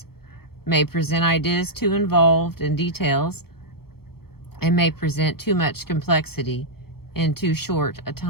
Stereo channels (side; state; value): right; late; 0.94 ms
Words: may present ideas too involved in details, and may present too much complexity in too short a